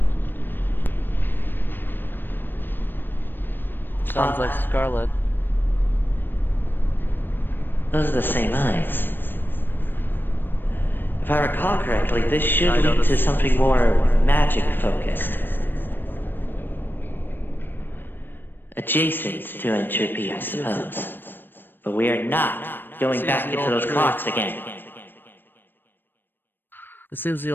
Sounds like Scarlet. Those are the same eyes. If I recall correctly, this should lead to something more magic-focused. Adjacent to entropy, I suppose. But we are not going back into those clocks again. It seems the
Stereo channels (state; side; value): late; right; 0.095 ms